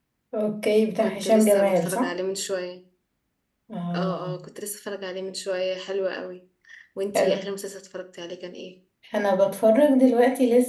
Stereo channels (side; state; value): both; identical; correlation 1.00